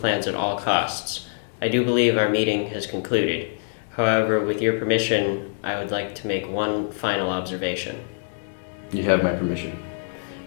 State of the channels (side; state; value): right; silent; 62 dB below the other